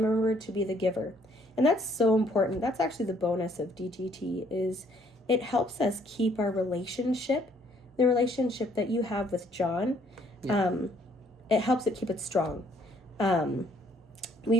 to be the giver? And that's so important. That's actually the bonus of DGT, is it helps us keep our relationship, the relationship that you have with John. It helps it keep it strong.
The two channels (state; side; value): normal; both; correlation 0.64